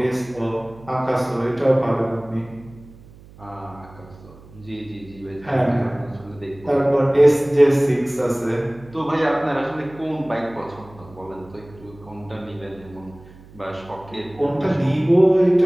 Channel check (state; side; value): noise; right; hum, 22 dB below the sound